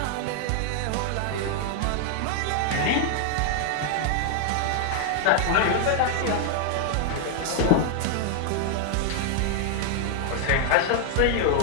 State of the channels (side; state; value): both; different; correlation 0.00